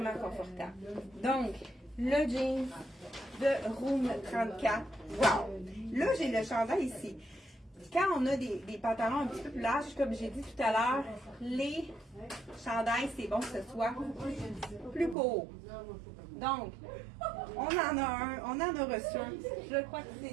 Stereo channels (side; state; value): left; drops out; at 15.2 s